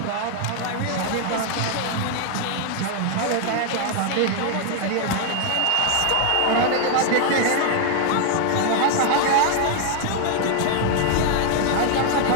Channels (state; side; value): different; both; correlation 0.00